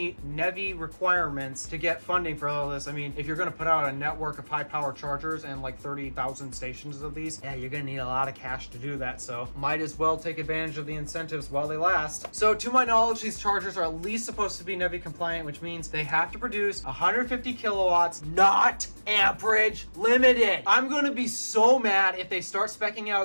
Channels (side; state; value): both; inverted; correlation -1.00